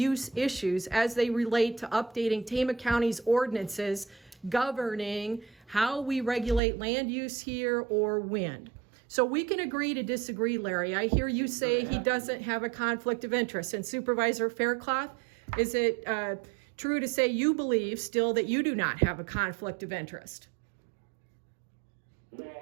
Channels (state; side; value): drops out; left; at 6.6 s